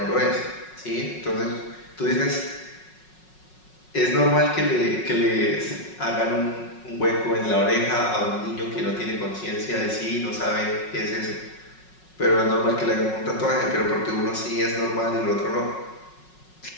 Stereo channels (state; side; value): late; right; 5.4 ms